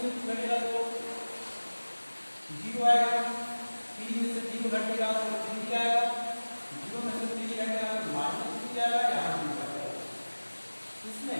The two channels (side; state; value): both; inverted; correlation -1.00